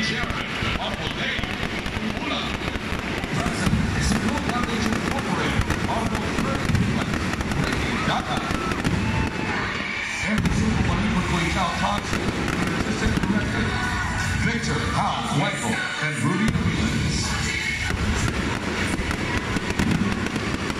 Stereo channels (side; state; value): both; identical; correlation 1.00